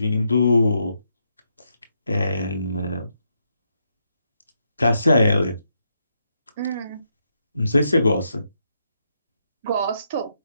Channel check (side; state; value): both; inverted; correlation -0.80